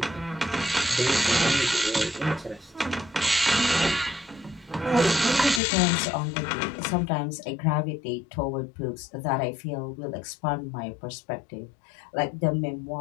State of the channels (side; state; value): right; drops out; at 5.6 s